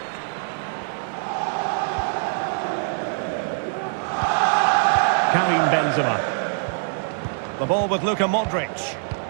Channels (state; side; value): silent; left; digital silence